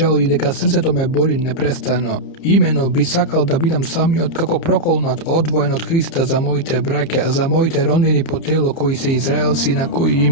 и дека срцето ме боли непрестано. Имено би сакал да бидам самиот како проколнат, одвоен од Христа за моите браќа, за моите роднини по тело кои се израелци на кои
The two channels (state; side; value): late; right; 30 ms